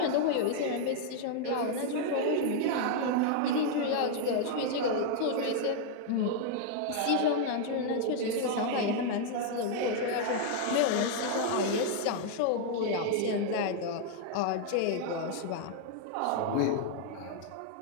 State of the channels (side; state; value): both; different; correlation 0.00